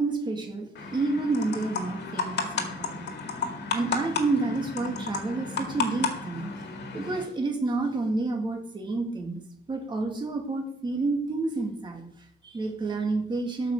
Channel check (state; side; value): normal; both; correlation 0.58